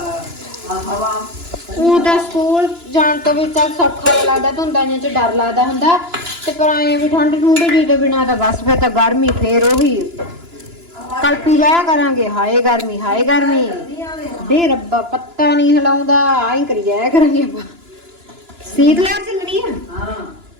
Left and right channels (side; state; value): left; late; 2.9 ms